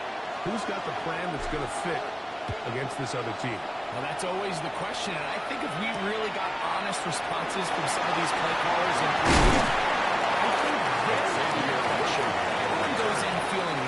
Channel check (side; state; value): both; identical; correlation 1.00